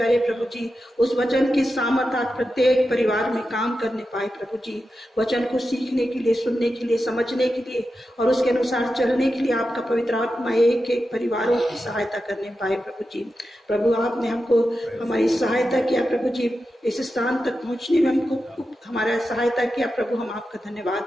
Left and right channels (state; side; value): normal; both; correlation 0.90